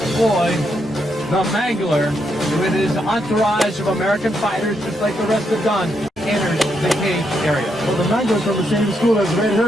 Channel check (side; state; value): both; normal; correlation 0.79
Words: Floyd, the Mangler, with his entourage of American fighters, just like the rest have done, enters the cage area. Well, the Mangler's from the same school as Red